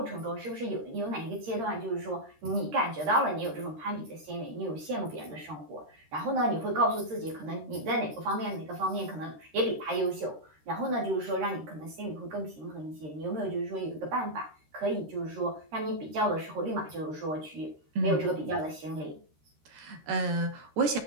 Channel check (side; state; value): left; late; 13 ms